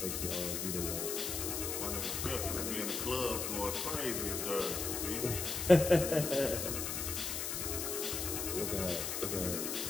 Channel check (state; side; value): noise; left; hiss, 2 dB below the sound